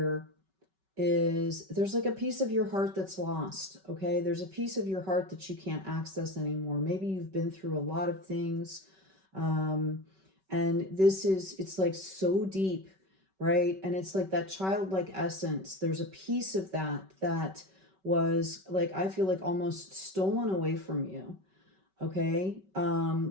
is there's like a piece of your heart that's lost, okay? There's a piece of your heart that you can't access anymore. Maybe you've been through a lot of things, and it's like so deep, right? And it's like that childlike essence. There's a piece of that was like, I feel like almost stolen away from you, okay?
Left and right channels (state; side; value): late; left; 5.2 ms